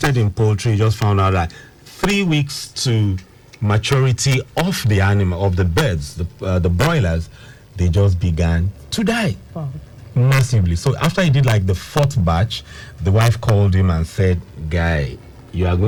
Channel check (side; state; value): both; identical; correlation 1.00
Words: in poultry, he just found out that 3 weeks to maturity of the animal, of the birds, the broilers, they just began to die. Wow. Massively. So after he did like the 4th batch, the wife called him and said, guy, you are